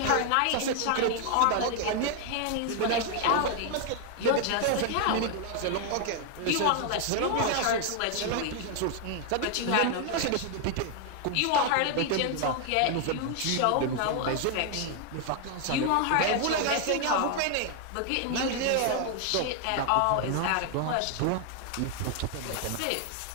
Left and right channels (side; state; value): both; different; correlation 0.00